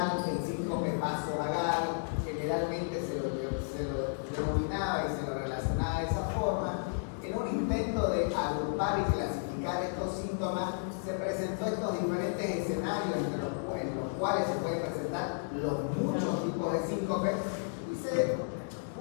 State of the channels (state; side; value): silent; right; digital silence